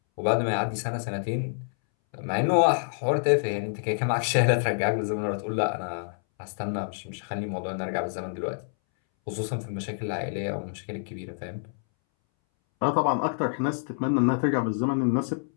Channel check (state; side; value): silent; right; 60 dB below the other